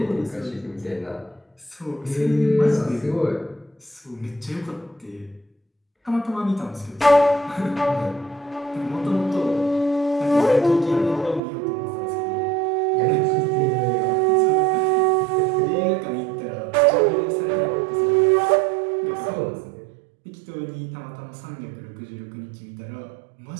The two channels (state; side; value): drops out; left; at 11.4 s